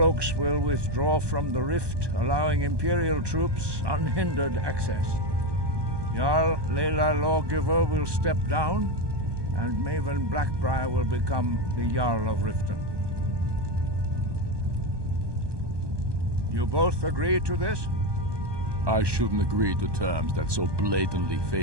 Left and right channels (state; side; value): late; left; 1.2 ms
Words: will withdraw from the Rift, allowing Imperial troops unhindered access. Jarl Lela Lawgiver will step down, and Maven Blackbriar will become the Jarl of Riften. You both agree to this? I shouldn't agree to terms that so blatantly